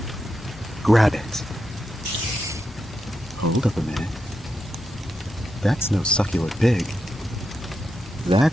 grab it. Hold up a minute. That's no succulent pig.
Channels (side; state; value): both; normal; correlation 0.86